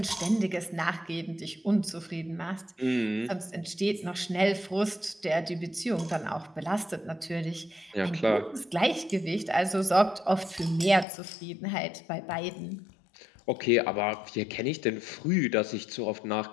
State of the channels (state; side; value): drops out; right; at 11.1 s